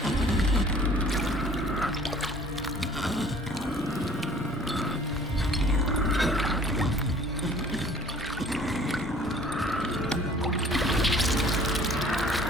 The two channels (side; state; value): both; normal; correlation 0.52